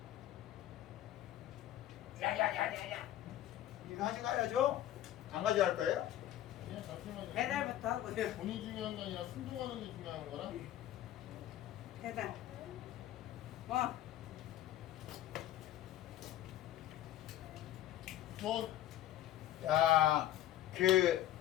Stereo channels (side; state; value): right; quieter; 12.9 dB